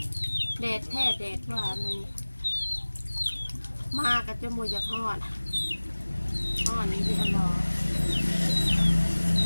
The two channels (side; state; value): both; inverted; correlation -1.00